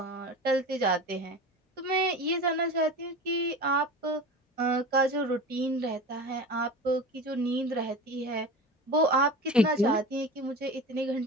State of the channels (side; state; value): both; normal; correlation 0.32